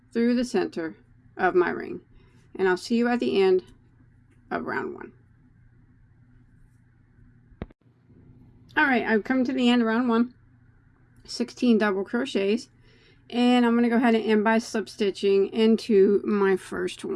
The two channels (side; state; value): both; identical; correlation 1.00